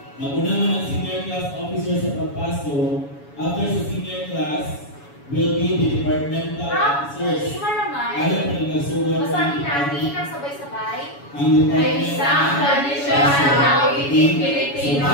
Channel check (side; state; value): right; late; 7.1 ms